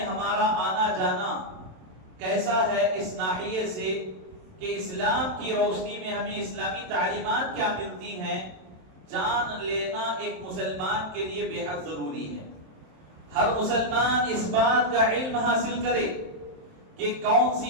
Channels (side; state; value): left; late; 27 ms